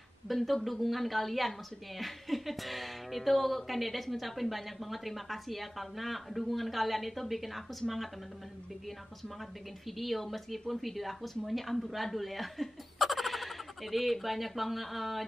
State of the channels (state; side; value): normal; both; correlation 0.97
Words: bentuk dukungan kalian maksudnya ya. Itu Kan Dedes ngucapin banyak banget terima kasih ya, karena dukungan kalian itu bikin aku semangat teman-teman, bikin aku semangat bikin video, meskipun video aku semuanya amburadul ya. Jadi banyak banget,